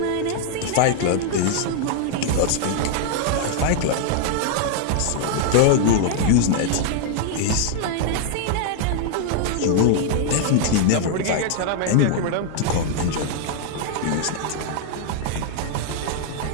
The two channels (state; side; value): different; both; correlation 0.00